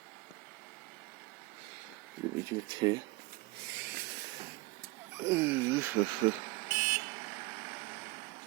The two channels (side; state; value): left; quieter; 22.4 dB